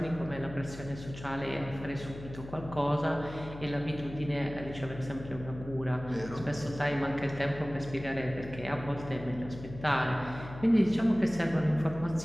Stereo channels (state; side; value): noise; left; hum, 13 dB below the sound